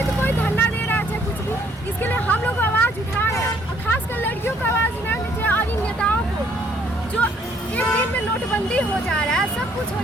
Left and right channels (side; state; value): both; normal; correlation 0.64